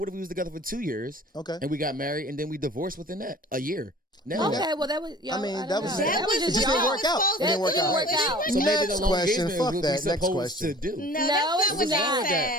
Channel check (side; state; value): both; normal; correlation 0.47